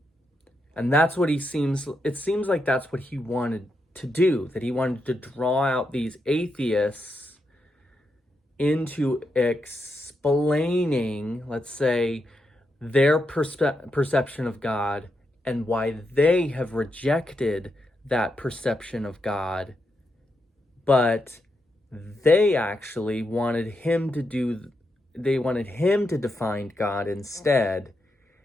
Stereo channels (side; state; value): both; normal; correlation 0.84